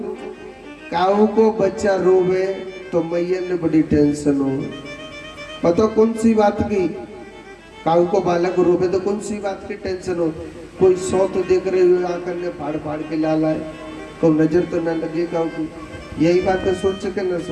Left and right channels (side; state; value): both; identical; correlation 1.00